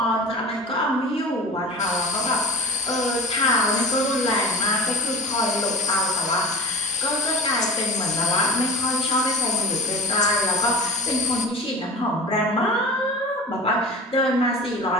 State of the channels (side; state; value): both; normal; correlation 0.35